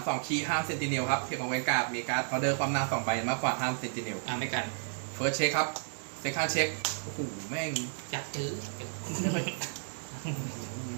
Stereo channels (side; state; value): left; silent; digital silence